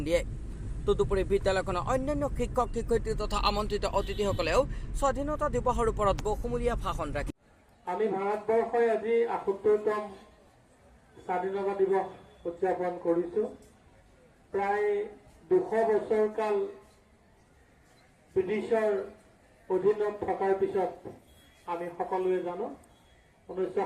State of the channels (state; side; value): identical; both; correlation 1.00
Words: দিয়ে। তদুপৰি বিদ্যালয়খনৰ অন্যান্য শিক্ষক শিক্ষয়িত্ৰী তথা আমন্ত্ৰিত অতিথিসকলেও স্বাধীনতা দিৱসৰ ওপৰত বহুমূলীয়া ভাষণ ৰাখে। আমি ভাৰতবৰ্ষই আজি ৭৮তম স্বাধীনতা দিৱস উদযাপন কৰিছোঁ। প্ৰায় ২০০ বছৰ কাল ব্ৰিটিছৰ অধীনত থকাৰ পিছত আমি সকলোৱে জানো